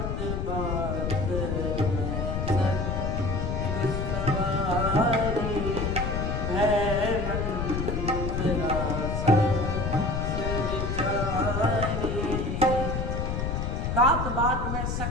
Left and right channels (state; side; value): noise; left; rumble, 1 dB below the sound